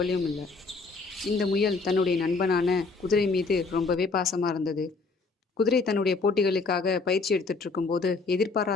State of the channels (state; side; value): quieter; right; 4.1 dB